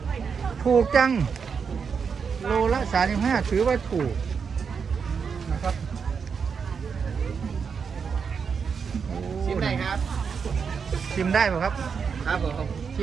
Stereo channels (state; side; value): quieter; left; 6.1 dB